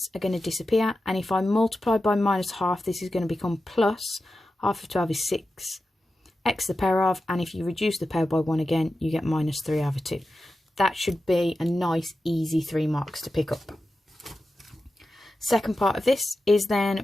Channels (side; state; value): both; normal; correlation 0.92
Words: are going to disappear. And if I multiply by minus half, this is going to become plus. Half of 12 is 6. X to the power of, and if you reduce the power by 1 again, you get minus 3 over 2. That should be a nice, easy 3 marks to pick up. Second part of this is then